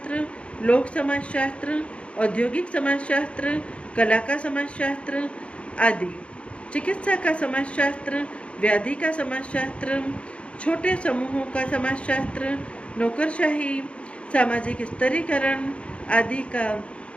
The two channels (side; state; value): right; late; 0.060 ms